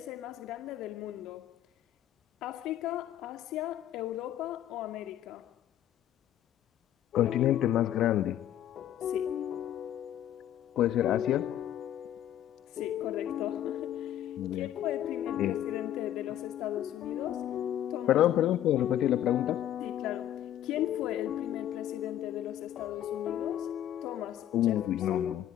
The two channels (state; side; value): quieter; right; 11.7 dB